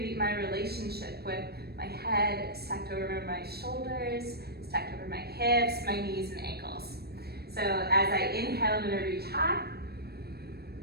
my relationship with my head stacked over my shoulders, stacked over my hips, my knees and ankles. So as I inhale, I'm going to reach high.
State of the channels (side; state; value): left; late; 0.47 ms